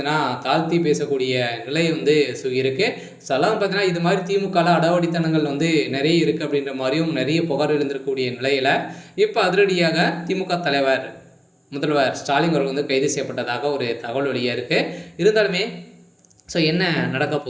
தாழ்த்தி பேசக்கூடிய நிலை இருக்குது. அதெல்லாம் பார்த்தீங்கன்னா இது மாதிரி திமுகவில் அடாவடித்தனங்கள் நிறைய இருக்குது அப்படின்ற மாதிரியும் நிறைய புகார் எழுந்திருக்கக்கூடிய நிலையில் இப்போ அதிரடியாக திமுக தலைவர் முதல்வர் ஸ்டாலின் அவர்கள் கைது செய்யப்பட்டதாக ஒரு தகவல் வெளியாக இருக்குது. இருந்தாலுமே என்ன நடக்க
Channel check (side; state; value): both; identical; correlation 1.00